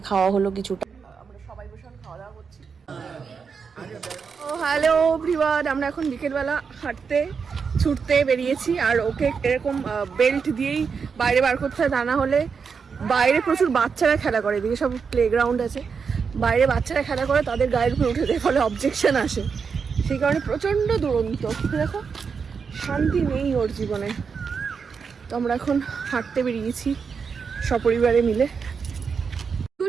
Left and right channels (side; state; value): left; quieter; 5.8 dB